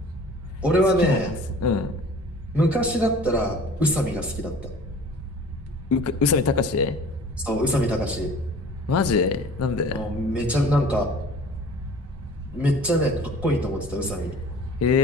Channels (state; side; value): normal; both; correlation 0.45